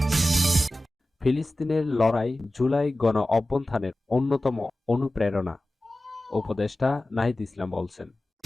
ফিলিস্তিনের লড়াই জুলাই গণ-অভ্যুত্থানের অন্যতম অনুপ্রেরণা, উপদেষ্টা নাহিদ ইসলাম বলছেন।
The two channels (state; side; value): normal; both; correlation 0.96